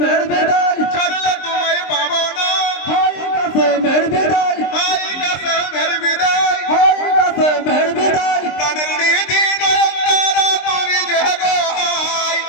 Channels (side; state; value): right; late; 23 ms